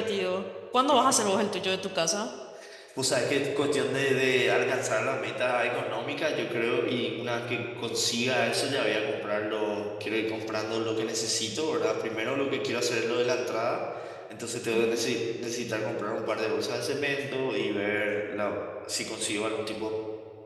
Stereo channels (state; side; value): identical; both; correlation 1.00